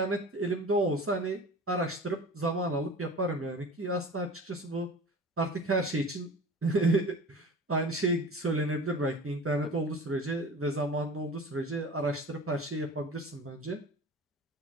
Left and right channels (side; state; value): both; normal; correlation 0.38